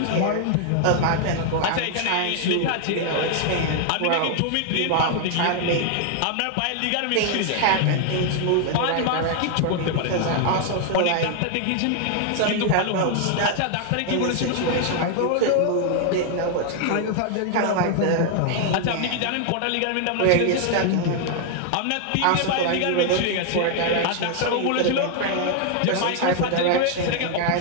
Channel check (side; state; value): both; different; correlation 0.00